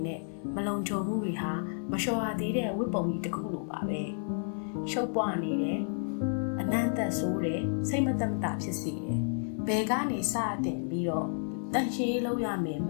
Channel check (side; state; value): right; silent; 57 dB below the other